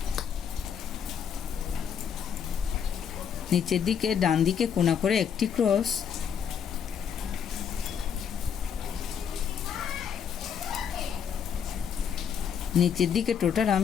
নিচের দিকে ডান দিকে কোণা করে একটি ক্রস, নিচের দিকে টোটাল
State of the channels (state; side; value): quieter; right; 7.8 dB